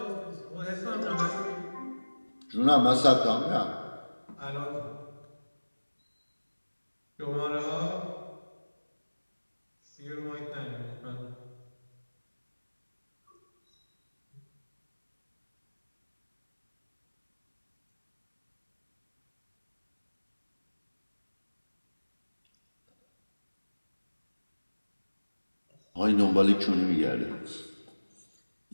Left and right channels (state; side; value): inverted; both; correlation -1.00